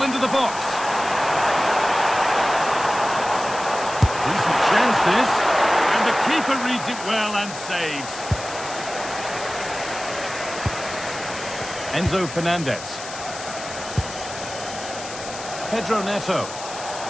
into the box. Decent chance this. And the keeper reads it well and saves. Enzo Fernandez. Pedro Neto.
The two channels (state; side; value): noise; left; hiss, 11 dB below the sound